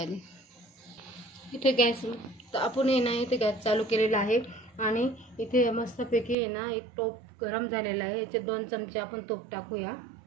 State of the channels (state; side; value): drops out; left; at 6.4 s